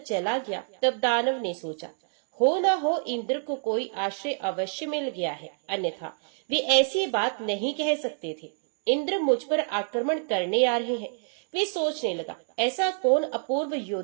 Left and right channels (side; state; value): left; silent; digital silence